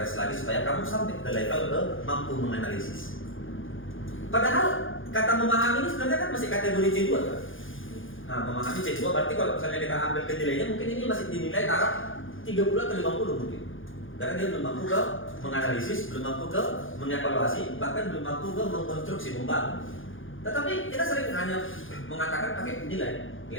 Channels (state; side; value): late; right; 0.58 ms